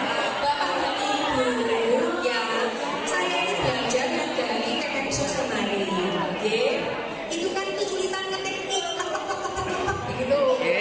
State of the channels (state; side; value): identical; both; correlation 1.00